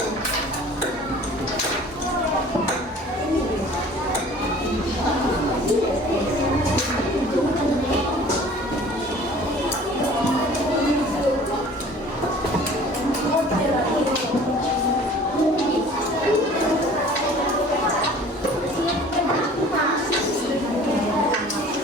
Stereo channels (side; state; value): both; normal; correlation 0.48